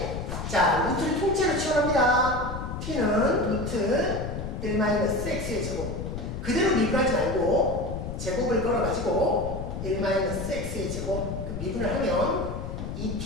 자, 루트를 통째로 치환합니다. t는 루트 1-x의 제곱. 그대로 미분하지 말고 제곱을 걸어가지고 1-x의 제곱. 그 미분을 하면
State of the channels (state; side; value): noise; left; rumble, 6 dB below the sound